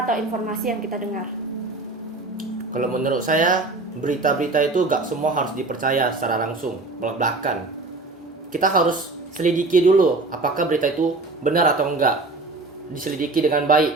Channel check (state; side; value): quieter; left; 3.3 dB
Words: atau informasi yang kita dengar. Kalau menurut saya berita-berita itu gak semua harus dipercaya secara langsung belak-belakan. Kita harus selidiki dulu apakah berita itu benar atau enggak. Diselidiki dengan